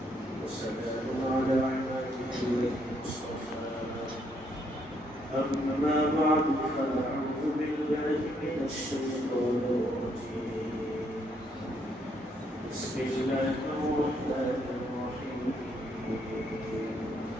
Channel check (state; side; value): normal; both; correlation 0.72